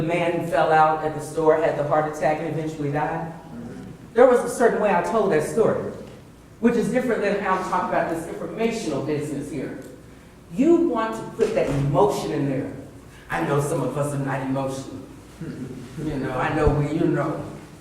man who fell out at the store, had the heart attack, and eventually died? There was a certain way I told that story, which is different than how I'm talking about this informational business here. You want to put that emotion in there. I know some of us are not emotional. You know, I know we, you know,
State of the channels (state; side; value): identical; both; correlation 1.00